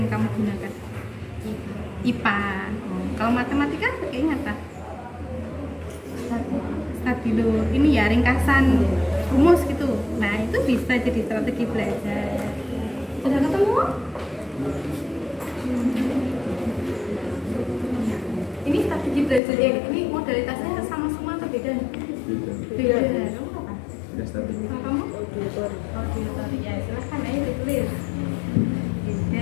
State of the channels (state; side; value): drops out; right; at 19.4 s